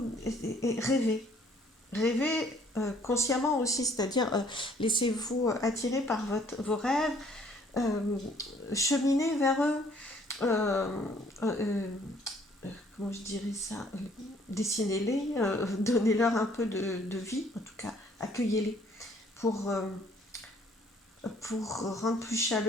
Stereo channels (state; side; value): normal; both; correlation 0.61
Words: et rêvez. Rêvez consciemment aussi, c'est-à-dire laissez-vous attirer par vos rêves, euh, cheminez vers eux, euh, euh, comment je dirais ça, dessinez-les, donnez-leur un peu de vie, en tout cas, accueillez-les pour, euh, pour rendre plus